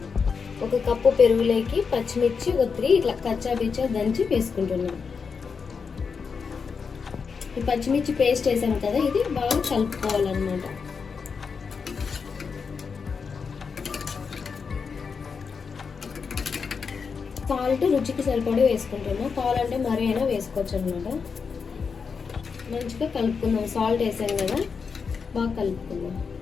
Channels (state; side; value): quieter; right; 5.6 dB